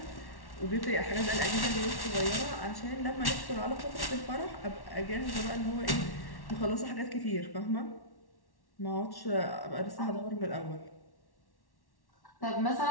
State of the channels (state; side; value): late; right; 1.1 ms